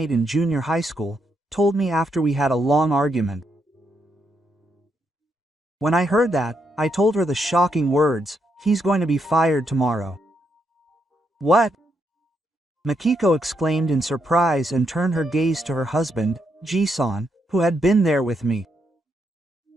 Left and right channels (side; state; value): both; normal; correlation 0.79